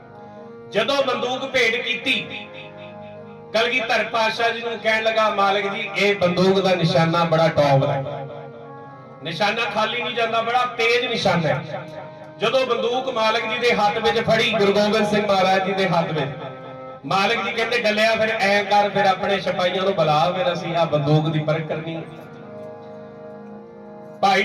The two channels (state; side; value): identical; both; correlation 1.00